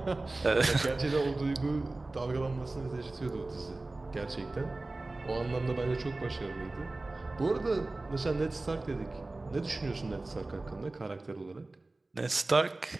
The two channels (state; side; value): quieter; left; 3.0 dB